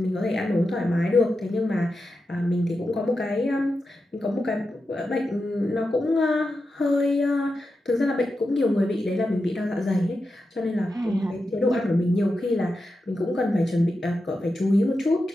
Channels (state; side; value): normal; both; correlation 0.89